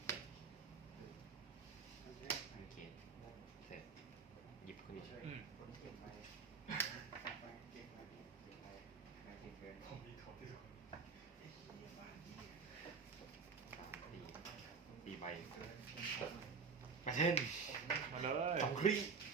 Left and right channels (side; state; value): left; quieter; 5.3 dB